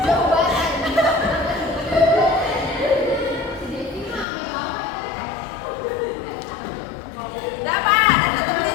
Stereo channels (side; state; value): right; drops out; at 4.2 s